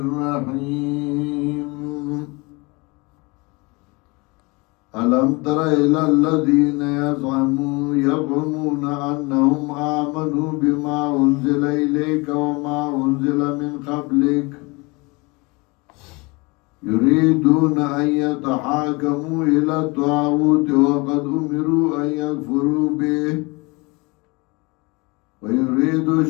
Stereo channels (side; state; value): right; quieter; 26.5 dB